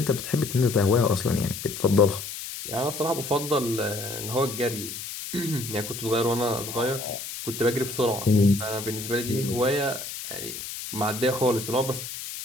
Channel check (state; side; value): noise; left; hiss, 8 dB below the sound